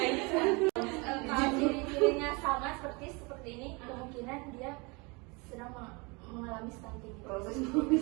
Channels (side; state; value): left; quieter; 28.5 dB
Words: sama seperti ini, kemungkinan dia sedang mengalami stunting. Proses